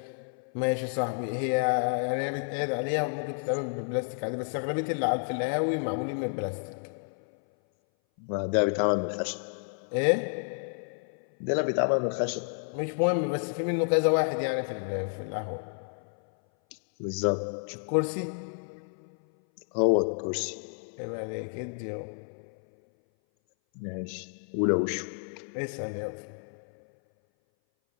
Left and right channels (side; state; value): right; silent; 58 dB below the other